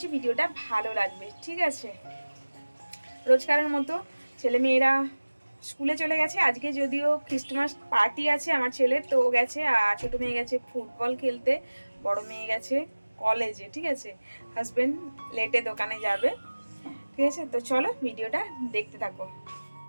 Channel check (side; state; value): both; inverted; correlation -1.00